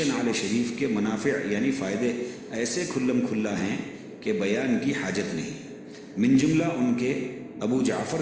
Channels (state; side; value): identical; both; correlation 1.00